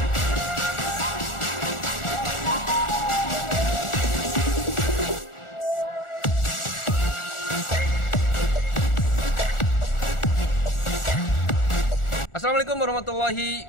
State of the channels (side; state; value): right; late; 1.4 ms